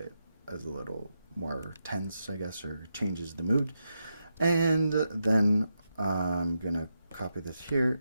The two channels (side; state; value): both; inverted; correlation -0.86